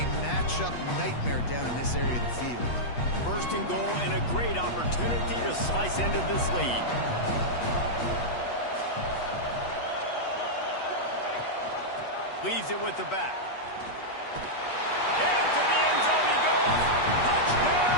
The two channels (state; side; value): late; right; 8.2 ms